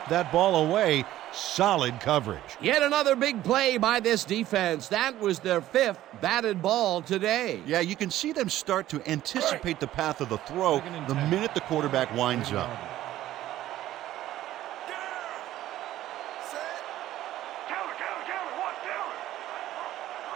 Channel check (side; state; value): left; quieter; 14.0 dB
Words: that ball away. Solid coverage. Yet another big play by this defense. That was their 5th batted ball today. Yeah, you can see them start to anticipate the path of the throw the minute the quarterback winds up.